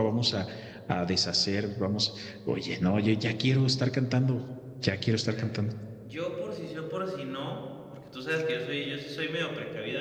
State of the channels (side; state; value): both; identical; correlation 1.00